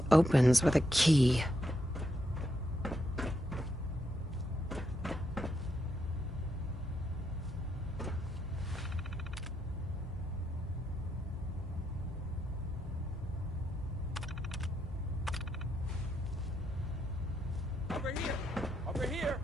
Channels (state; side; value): normal; both; correlation 0.79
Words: opens with a key. Over here! Over here!